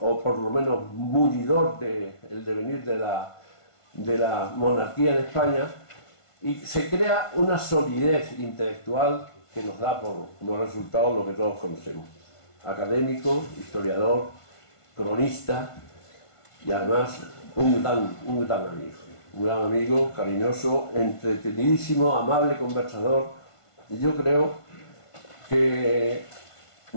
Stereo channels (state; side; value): late; right; 1.5 ms